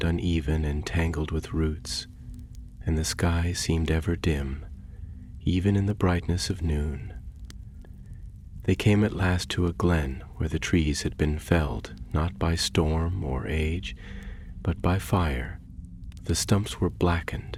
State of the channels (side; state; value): both; identical; correlation 1.00